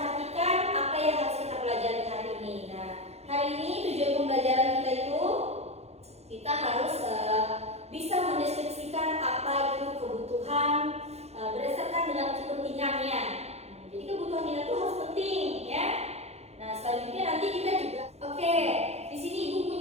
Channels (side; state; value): left; late; 0.31 ms